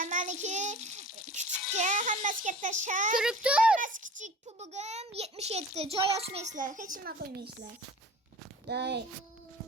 Meniki kichikcha, hammasiga tashab. Tur. Hammasi kichik, pubugim 77. Joy ochmaysizlar, hech nima qo'ymaysizlar. Day.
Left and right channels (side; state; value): both; normal; correlation 0.41